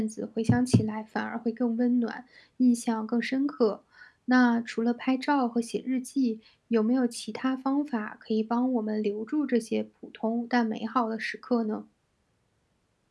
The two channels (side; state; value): both; identical; correlation 1.00